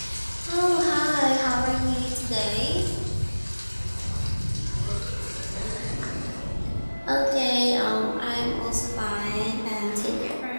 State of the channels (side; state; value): both; inverted; correlation -1.00